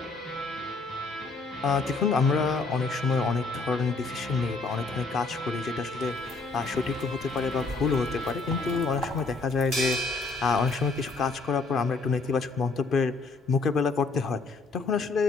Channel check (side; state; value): right; quieter; 3.8 dB